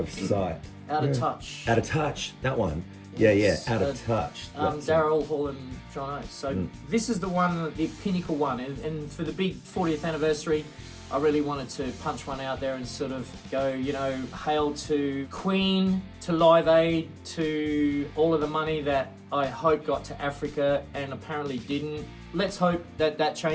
Sight. Out of Touch. Out of Touch, that one. Yes. Yeah, Out of Touch. That's it. Daryl Hall and John Oates. So this is the one, the pinnacle one. And for the big 40th anniversary, I really wanted to punch one out there and sort of go, you know, hail to Queen, to Live Aid, to all of the money that I hope got to Africa and apparently didn't. Let's hope that that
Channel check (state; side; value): identical; both; correlation 1.00